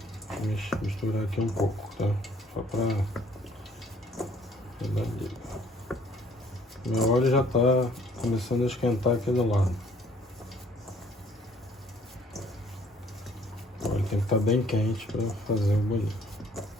misturar aqui um pouco, tá? Só pra meu óleo já tá começando a esquentar aqui do lado. O óleo tem que estar bem quente para fazer o bolinho.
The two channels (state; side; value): normal; both; correlation 0.60